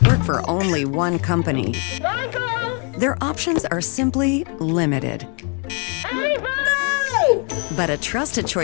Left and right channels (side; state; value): right; quieter; 36.8 dB